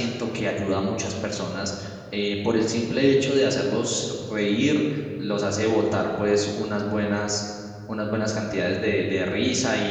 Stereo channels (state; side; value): identical; both; correlation 1.00